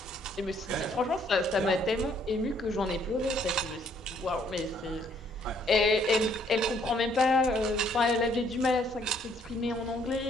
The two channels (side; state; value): both; normal; correlation 0.66